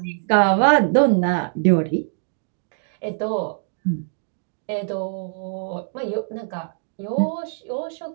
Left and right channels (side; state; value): left; silent; digital silence